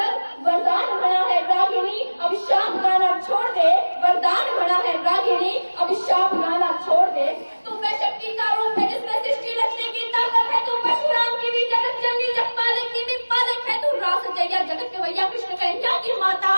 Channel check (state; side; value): inverted; both; correlation -1.00